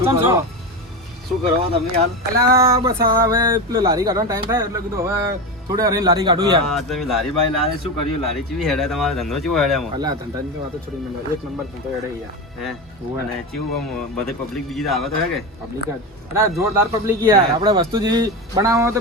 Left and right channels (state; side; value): normal; both; correlation 0.19